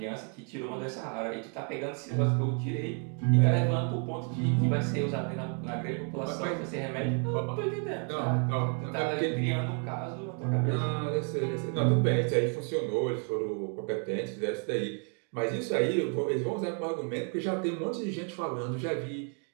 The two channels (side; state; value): left; quieter; 39.5 dB